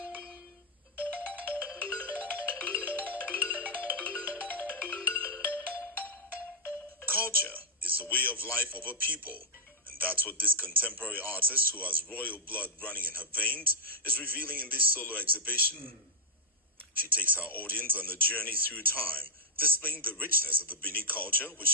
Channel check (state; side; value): normal; both; correlation 0.00